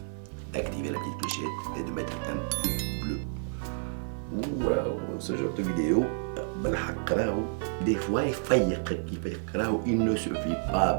d'activer la petite clochette et de mettre un pouce bleu. Waouh, ce genre de vidéo, بالحق راهو des fois يفيقك راهو il ne suffit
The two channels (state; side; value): silent; left; 56 dB below the other